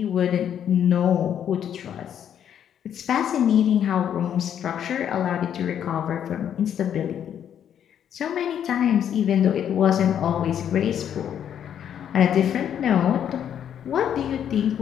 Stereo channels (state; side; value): quieter; right; 9.3 dB